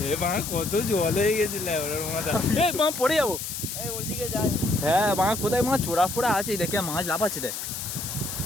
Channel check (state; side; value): noise; left; hiss, 6 dB below the sound